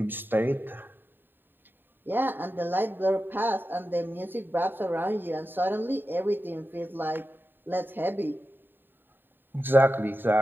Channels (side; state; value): left; late; 0.095 ms